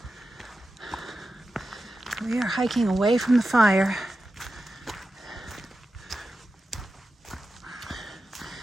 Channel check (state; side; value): normal; both; correlation 0.92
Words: We are hiking away from the fire.